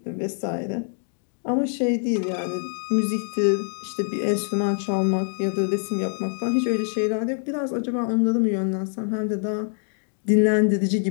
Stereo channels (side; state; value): right; silent; 62 dB below the other